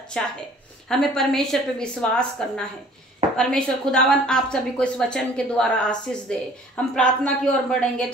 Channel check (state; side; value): normal; both; correlation 0.52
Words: है, हमें परमेश्वर पे विश्वास करना है। परमेश्वर खुदावन आप सभी को इस वचन के द्वारा आशीष दे। हम प्रार्थना की ओर बढ़ेंगे।